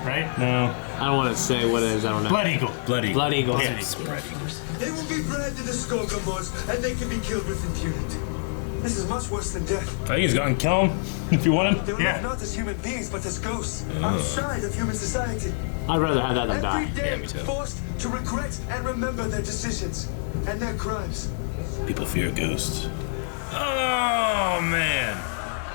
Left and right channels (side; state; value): right; silent; 61 dB below the other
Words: right? No. I don't want to say what it is. I don't know. Blood Eagle. Blood eagle. Blood Eagle. Yeah. Spread eagles. They will be bred to the Skogamods, and they can be killed with impunity. This is much worse than death. I think he's gonna kill him if you want They him. will live not as human beings, but as ghosts, outside of human society. I'd rather have that than Every die. day, me too. forced to regret and remember their decisions and their crimes. People fear ghosts. Oh man.